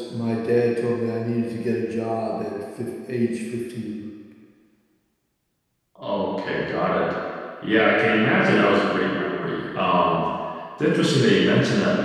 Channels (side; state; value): both; identical; correlation 1.00